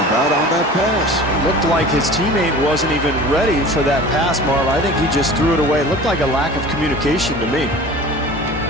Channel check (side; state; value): both; normal; correlation 0.40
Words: about on that pass? Looked like his teammate wasn't even ready for that pass, Marv. I think he just threw it away. Looked like a lack of communication to me.